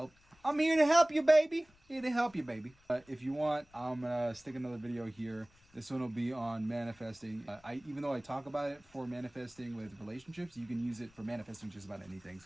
I'm here to help you, baby. Here to help you, baby. If you want, I'm gonna stick another video here. This one will be on manifesting. Even though I talk about it for manifesting with relationships, you can use it for manifesting just about anything.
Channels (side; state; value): left; noise; rumble, 30 dB below the sound